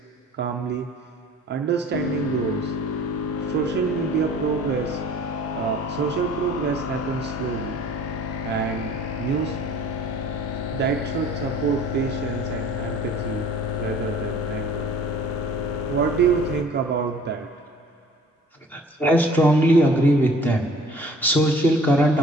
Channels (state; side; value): normal; both; correlation 0.49